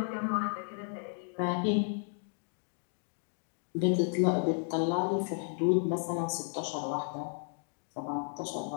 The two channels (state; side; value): silent; right; 55 dB below the other